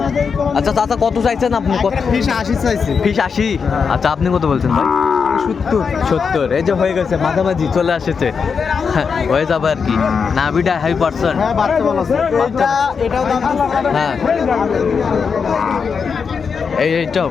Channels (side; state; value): right; quieter; 5.8 dB